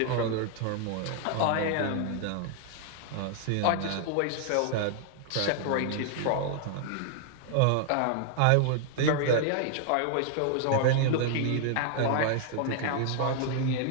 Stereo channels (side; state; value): both; different; correlation 0.00